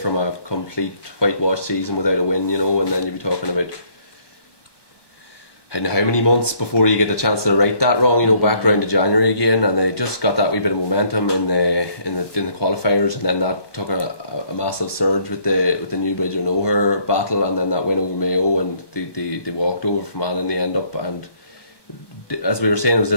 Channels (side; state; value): right; late; 1.2 ms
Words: a complete whitewash season without a win, you know, and then you'd be talking about how many months before you get the chance to right that wrong, you know, back round to January again, and they just got that wee bit of momentum in the qualifiers, and then that took a massive surge with the Newbridge or Nowhere battle, and then that win over Mayo, and they walked over Fermanagh in the end up, and as we were saying, it was